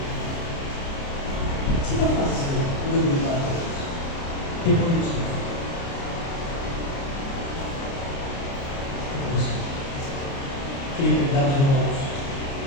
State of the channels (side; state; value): right; late; 29 ms